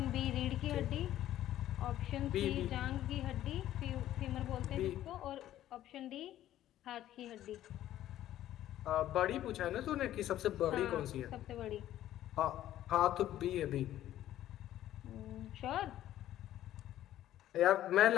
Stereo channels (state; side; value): quieter; right; 12.9 dB